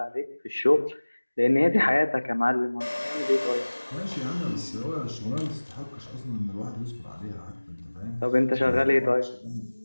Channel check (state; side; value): inverted; both; correlation -1.00